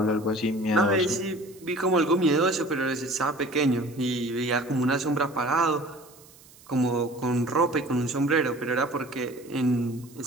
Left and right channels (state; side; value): noise; right; hiss, 24 dB below the sound